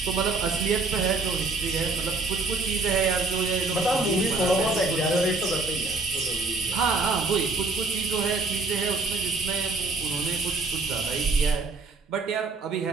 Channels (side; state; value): left; quieter; 3.6 dB